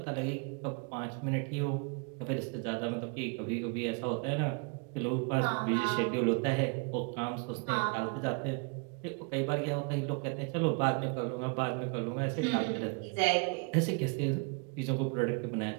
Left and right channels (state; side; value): quieter; left; 33.5 dB